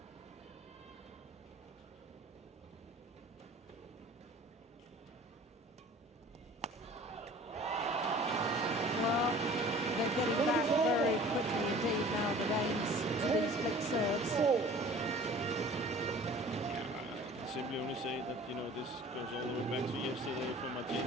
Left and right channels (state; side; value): normal; both; correlation 0.46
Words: Well, they're getting back very quickly indeed now, the Danes, to these flick serves. 4. Simply only say that, you know, this goes all the way back to yesterday from Martina.